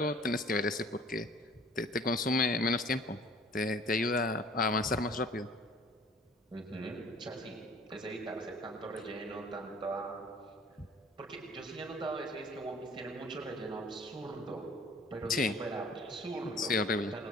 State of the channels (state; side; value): normal; both; correlation 0.51